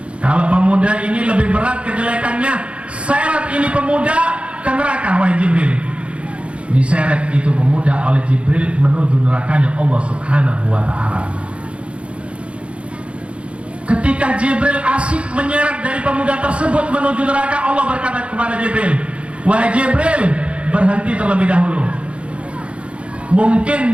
kalau pemuda ini lebih berat kejelekannya, seret ini pemuda ke neraka, wahai Jibril. Diseret itu pemuda oleh Jibril menuju nerakanya Allah Subhanahu wa ta'ala. Ketika Jibril asik menyeret dari pemuda tersebut menuju neraka, Allah berkata kepada Jibril, wahai Jibril, berhenti terlebih dahulu. Mungkin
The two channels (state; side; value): late; left; 0.060 ms